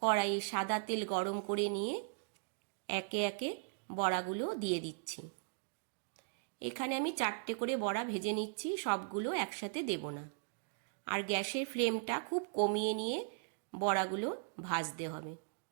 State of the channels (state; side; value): silent; left; digital silence